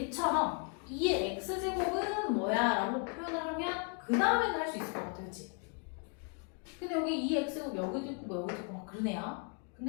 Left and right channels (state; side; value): quieter; right; 38.3 dB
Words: 2의 x제곱은 뭐야? 라고 표현을 하면 그 다음에는 할 수 있을 것 같아. 그치? 근데 여기 2x제곱 여기도 있고 뭐 여기도 있고 막 그러네요.